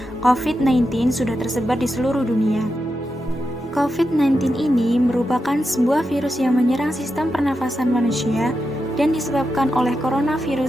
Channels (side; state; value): both; normal; correlation 0.87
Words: COVID-19 sudah tersebar di seluruh dunia. COVID-19 ini merupakan sebuah virus yang menyerang sistem pernafasan manusia dan disebabkan oleh